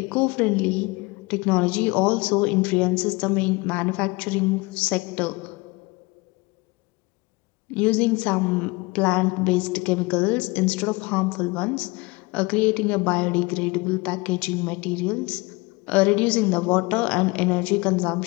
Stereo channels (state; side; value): quieter; right; 25.0 dB